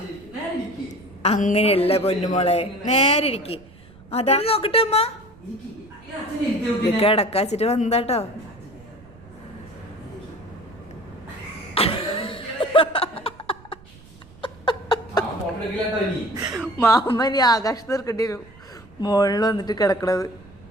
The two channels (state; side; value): noise; right; rumble, 23 dB below the sound